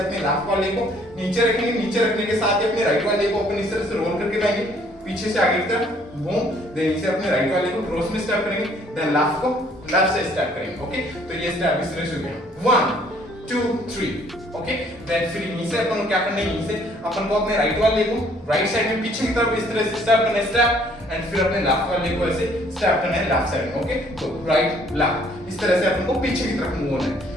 अपने लेफ्ट वाले को नीचे रखेंगे, नीचे रखने के साथ ही अपने राइट वाले को अपन इस तरह से रोल करके लाएंगे पीछे से आगे की तरफ, बूम, देन इसे अपने राइट वाले को क्रॉस में स्टेप करेंगे, देन लेफ्ट को लेफ्ट से स्टेप करेंगे। ओके, तो ये स्टेप इस तरह से हो गया 1 2 3। ओके, देन फिर यहीं से अपन को क्या करना है, यहीं से अपन को अपने राइट वाले को राइट साइड में पीछे की तरफ इस तरह से स्टेप करना है स्टेप, एंड फिर अपने लेफ्ट वाले को ऐसे स्टेप करना है लेफ्ट साइड में। ओके, तो राइट लेफ्ट इस तरह से अपन को पीछे की तरफ मूव होना है।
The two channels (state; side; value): normal; both; correlation 0.61